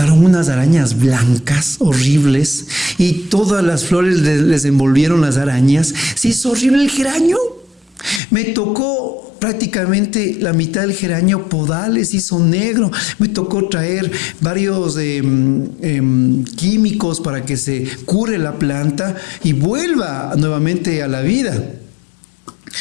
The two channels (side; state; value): right; drops out; at 8.2 s